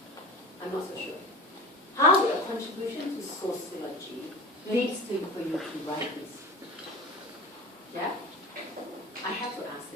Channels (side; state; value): both; normal; correlation 0.33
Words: I'm not so sure. How a contribution to sociology leads to for you to write this? Yeah? I have to ask